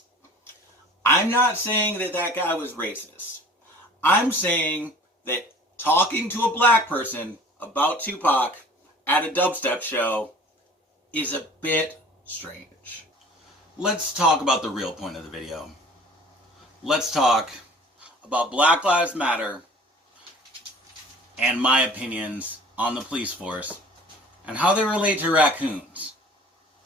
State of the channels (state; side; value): normal; both; correlation 0.47